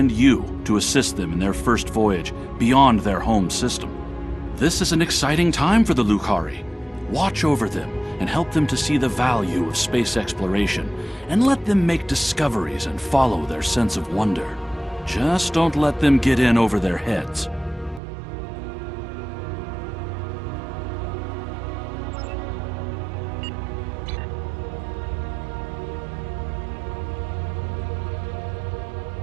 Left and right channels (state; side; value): drops out; left; at 18.0 s